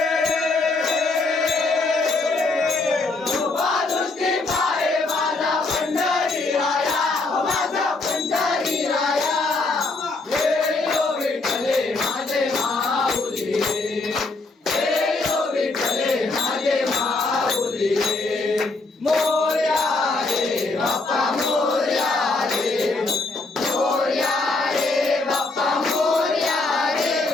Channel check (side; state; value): right; quieter; 3.4 dB